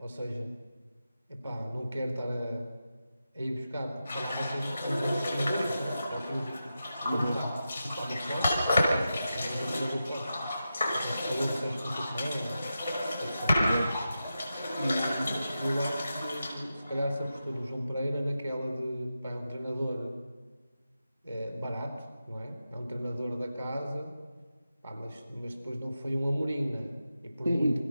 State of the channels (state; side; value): inverted; both; correlation -0.90